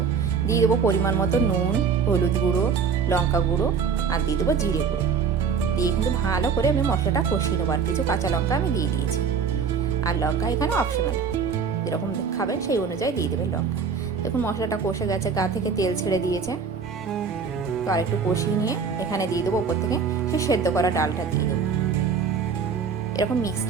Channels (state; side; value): quieter; left; 5.9 dB